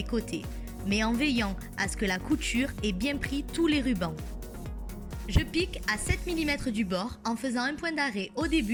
côtés, mais en veillant à ce que la couture ait bien pris tous les rubans. Je pique à 7 mm du bord en faisant un point d'arrêt au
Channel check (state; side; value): identical; both; correlation 1.00